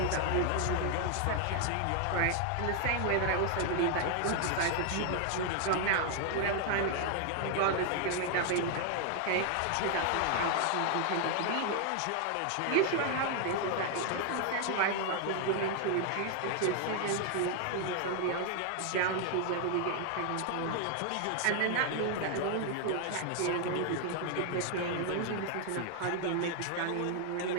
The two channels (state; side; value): different; both; correlation 0.00